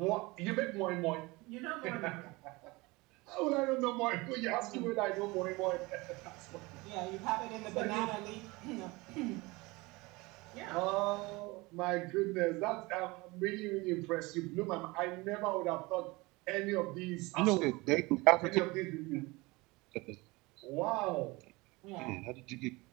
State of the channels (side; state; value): left; quieter; 23.5 dB